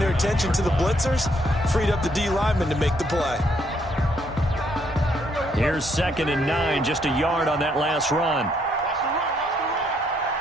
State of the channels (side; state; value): both; normal; correlation 0.71